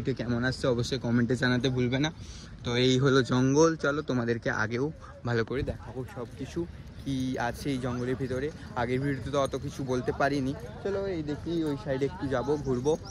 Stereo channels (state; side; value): identical; both; correlation 1.00